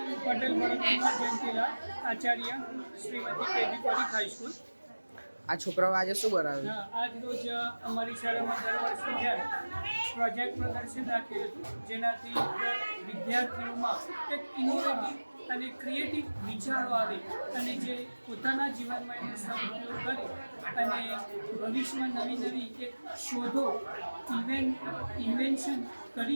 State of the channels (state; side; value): inverted; both; correlation -1.00